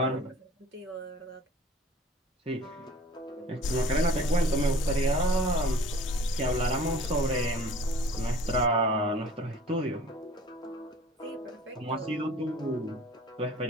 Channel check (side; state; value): both; normal; correlation 0.48